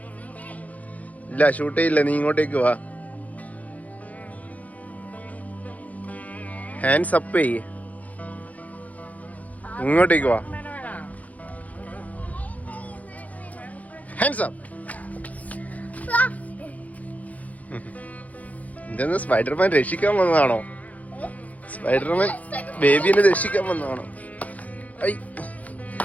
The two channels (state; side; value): late; right; 0.073 ms